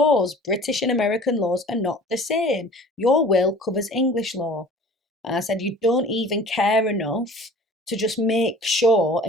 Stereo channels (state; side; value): normal; both; correlation 0.45